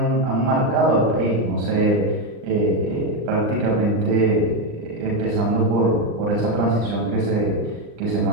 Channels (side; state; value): left; late; 35 ms